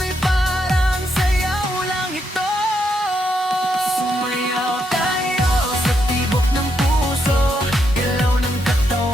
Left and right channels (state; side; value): normal; both; correlation 0.79